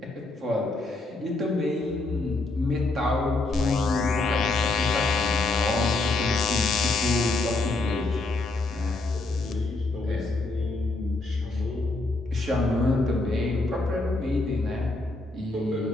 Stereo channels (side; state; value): right; quieter; 3.1 dB